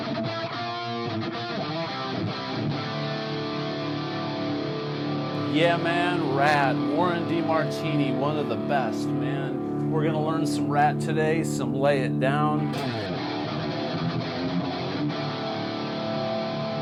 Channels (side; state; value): both; identical; correlation 1.00